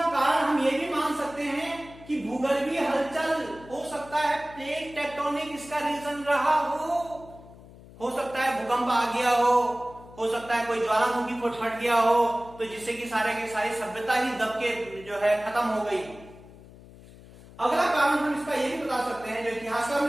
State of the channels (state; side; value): noise; left; hum, 20 dB below the sound